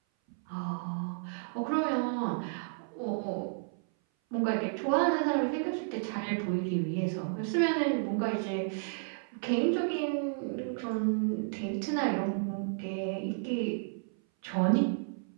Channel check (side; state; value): left; silent; 56 dB below the other